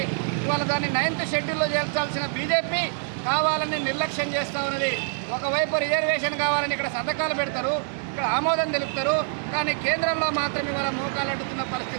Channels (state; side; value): silent; left; digital silence